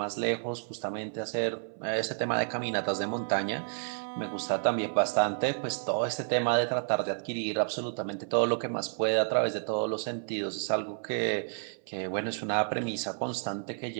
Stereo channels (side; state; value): left; silent; 57 dB below the other